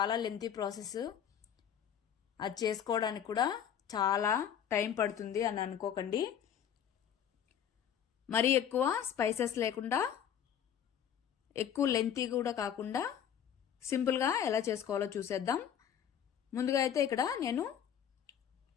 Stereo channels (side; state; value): right; quieter; 9.2 dB